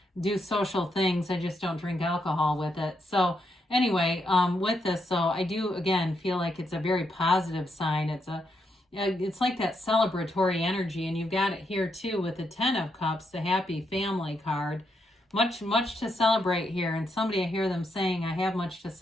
do social things. I just don't drink alcohol with it. So anyway, with this, so I do, again, feel like it's a very positive sign. It's like that celebratory energy, and you've got it here too with the 10 of Cups, the happy family card. Much to celebrate here, and somebody, I hear them saying, I have much to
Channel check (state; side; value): normal; both; correlation 0.80